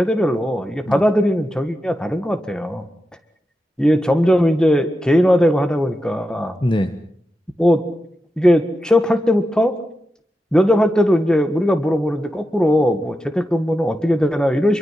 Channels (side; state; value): both; normal; correlation 0.89